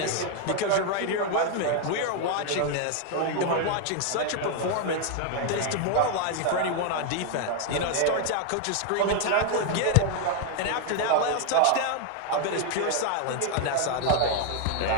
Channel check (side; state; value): both; different; correlation 0.01